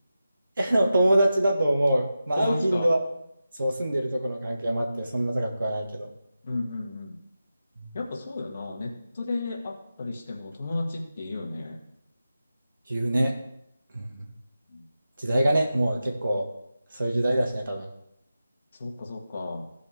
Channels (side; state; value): both; inverted; correlation -0.92